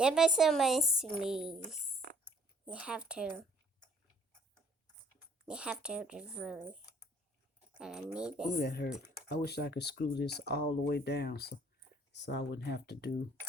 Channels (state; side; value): normal; both; correlation 0.59